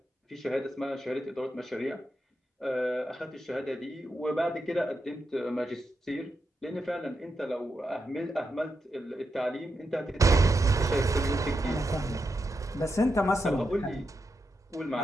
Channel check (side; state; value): both; normal; correlation 0.86